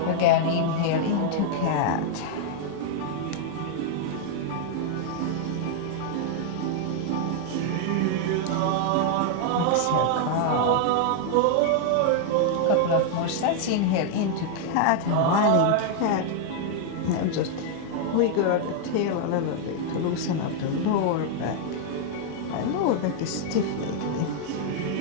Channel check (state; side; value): different; both; correlation 0.00